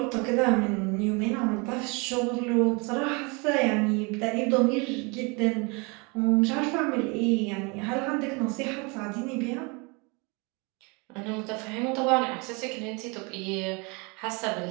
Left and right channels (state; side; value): quieter; left; 29.7 dB